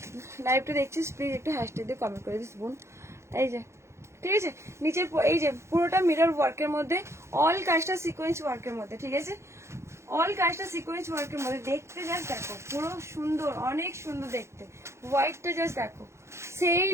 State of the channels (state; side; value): late; left; 0.13 ms